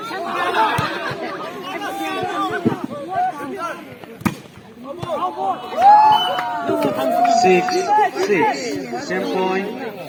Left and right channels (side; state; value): both; identical; correlation 1.00